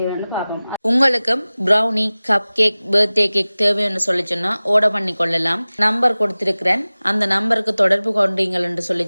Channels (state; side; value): inverted; both; correlation -0.98